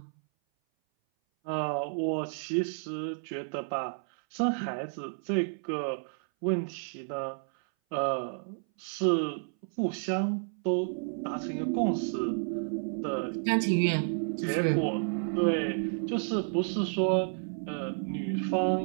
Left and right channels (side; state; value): left; silent; 57 dB below the other